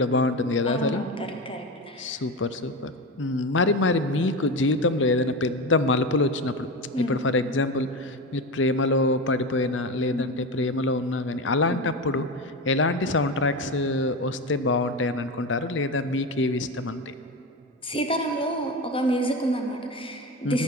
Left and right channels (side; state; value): both; normal; correlation 0.21